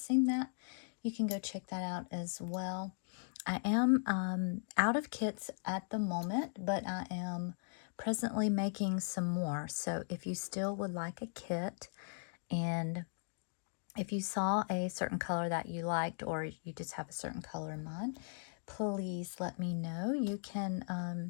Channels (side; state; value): right; silent; digital silence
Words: that, you can go check that out as well. I am out of kits at the moment, but I am presently making some more. So if you still would like a kit, and if you saw a certain color that you liked, or you just have a certain color in mind, please let me know. You